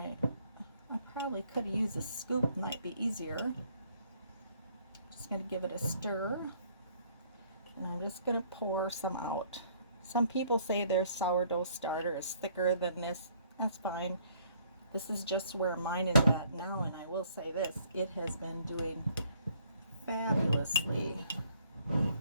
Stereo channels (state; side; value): inverted; both; correlation -0.63